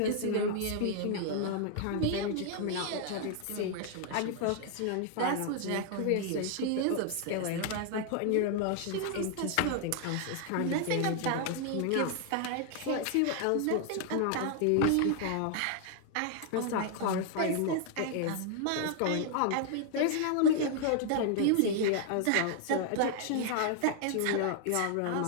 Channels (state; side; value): different; both; correlation 0.00